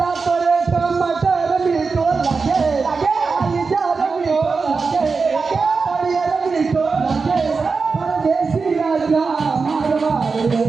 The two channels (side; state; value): left; quieter; 4.6 dB